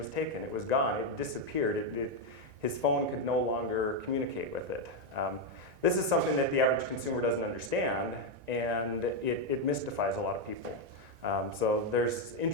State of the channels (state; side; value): late; left; 1.9 ms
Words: taken. It was gone. It disappeared. His phone could no longer communicate with it. This is something that the average consumer doesn't understand, and it mystifies a lot of people. So there's